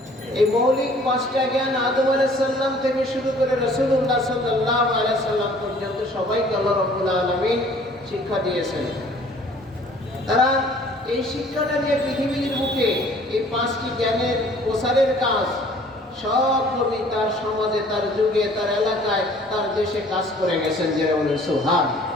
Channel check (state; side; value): normal; both; correlation 0.54